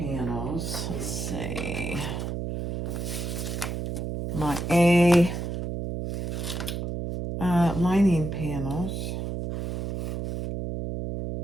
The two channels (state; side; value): noise; right; hum, 3 dB below the sound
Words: Let's see. My A lining panels.